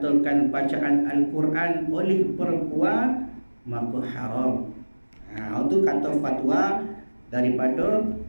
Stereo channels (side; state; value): both; inverted; correlation -1.00